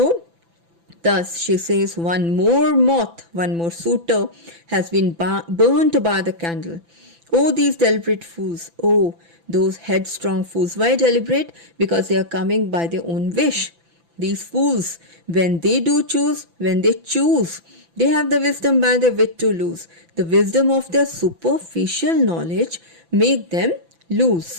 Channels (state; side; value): late; left; 5.9 ms